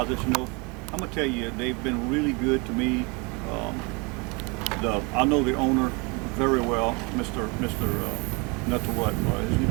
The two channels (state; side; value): quieter; left; 29.6 dB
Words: You know, I'm gonna tell you, they've been really good to me. I know the owner very well, Mr. Not to what his